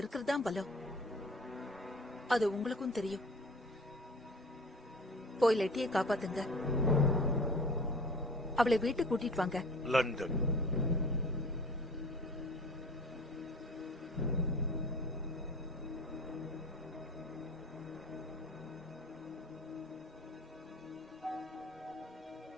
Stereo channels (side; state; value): both; normal; correlation 0.43